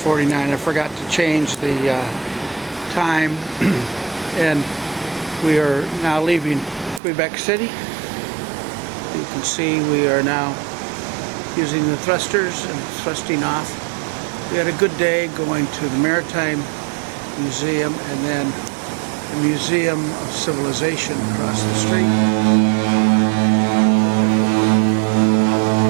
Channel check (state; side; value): drops out; left; at 7.0 s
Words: I forgot to change the time. And we are now leaving Quebec City. You can see we are now using the thrusters and thrusting off. We had a good day going to the Maritime Museum and then the Museum of Civilization across the street.